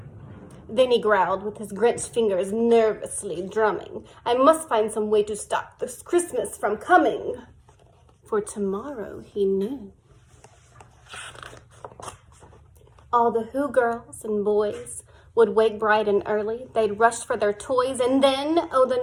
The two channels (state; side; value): identical; both; correlation 1.00